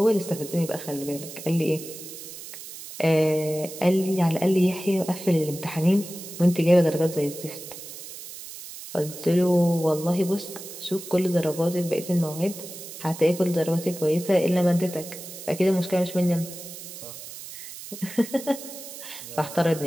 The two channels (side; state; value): right; noise; hiss, 12 dB below the sound